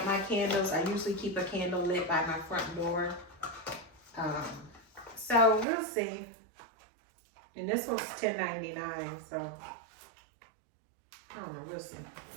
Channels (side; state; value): left; drops out; at 5.7 s